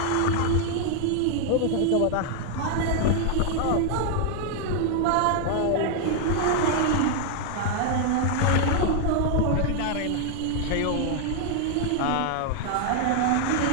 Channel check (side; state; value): both; different; correlation 0.00